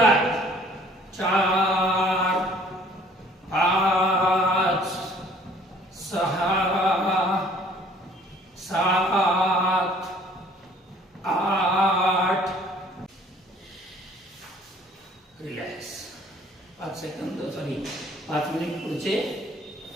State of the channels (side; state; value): both; normal; correlation 0.56